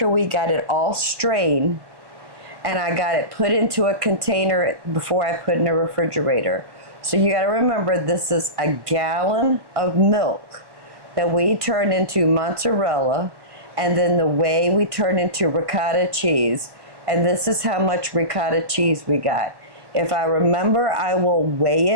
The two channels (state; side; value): late; left; 1.5 ms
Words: we got it all strained, and I got it put into a container before I put in the refrigerator. So you got to remember, this is a gallon of milk that we turned into mozzarella, and then the whey we turned into ricotta cheese. And this is how much ricotta cheese we got. If I remember, I will weigh